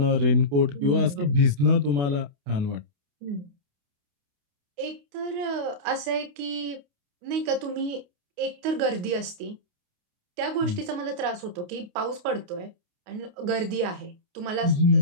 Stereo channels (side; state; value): left; late; 28 ms